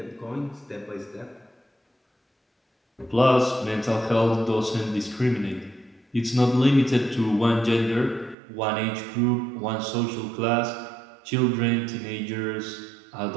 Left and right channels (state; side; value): drops out; left; at 8.3 s